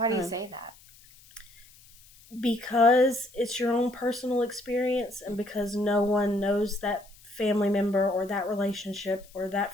do you say that? Because it's your own personal experience, and because no one knows that family member or that relationship or that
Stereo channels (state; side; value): noise; left; hiss, 25 dB below the sound